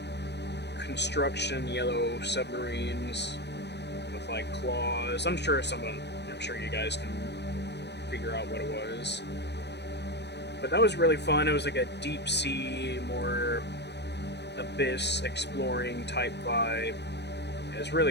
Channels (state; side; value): late; right; 0.50 ms